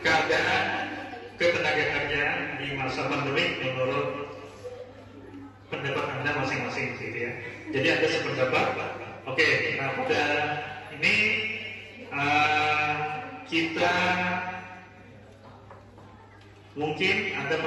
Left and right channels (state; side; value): identical; both; correlation 1.00